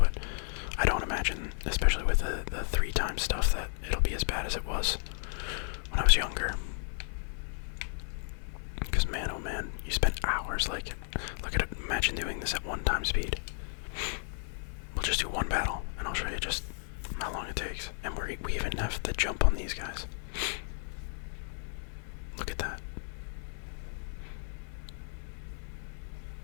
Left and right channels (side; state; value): right; silent; 55 dB below the other